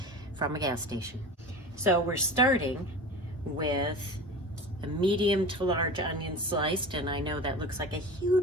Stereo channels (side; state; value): both; normal; correlation 0.33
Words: from a gas station. So we're starting with a medium to large onion sliced, and I know that looks like a